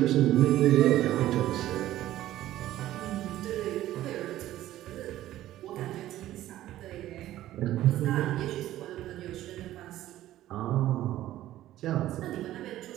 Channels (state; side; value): quieter; left; 14.1 dB